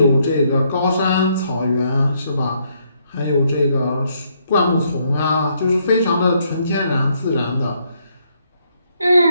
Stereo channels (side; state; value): both; inverted; correlation -0.73